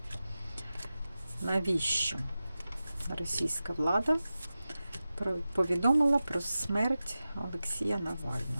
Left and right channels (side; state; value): both; inverted; correlation -0.94